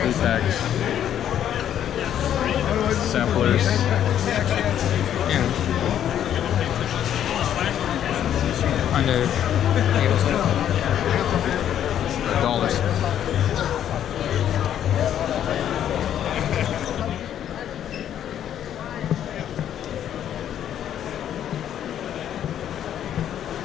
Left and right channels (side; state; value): right; quieter; 10.3 dB